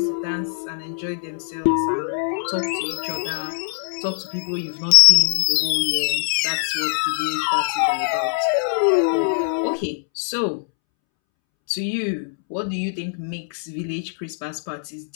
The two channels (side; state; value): right; silent; 64 dB below the other